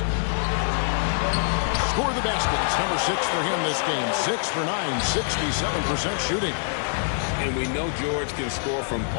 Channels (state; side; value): silent; right; digital silence